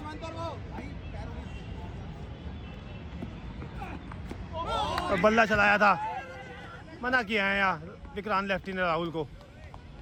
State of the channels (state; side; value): identical; both; correlation 1.00